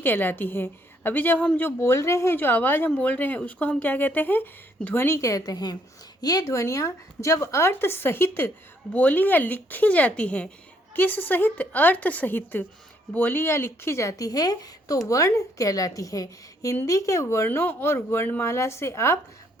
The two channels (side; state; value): both; normal; correlation 0.69